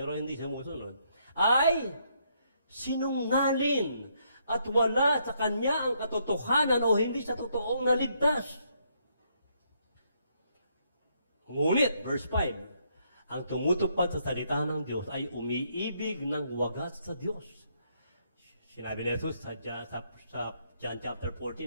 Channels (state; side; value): inverted; both; correlation -0.73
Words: hindi sumusunod, ay sinungaling at wala sa kanya ang katotohanan o hindi sa totoong naligtas. Ngunit, verse 5, ang tumutupad sa salita ng Diyos ay umiibig ng wagas sa Diyos. Sinabi ni Jesus sa John chapter